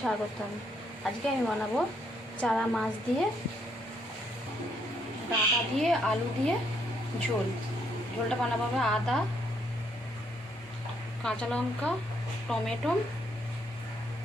স্বাগতম। আজকে আমি বানাবো চারা মাছ দিয়ে, ডাঁটা দিয়ে, আলু দিয়ে ঝোল। ঝোলটা বানাবো হবে আদা, কাঁচা লঙ্কা, টমেটো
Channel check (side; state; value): both; normal; correlation 0.72